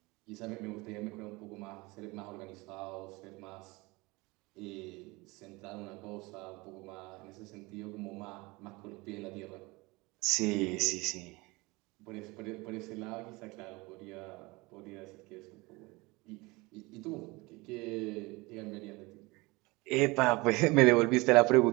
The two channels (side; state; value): left; quieter; 23.8 dB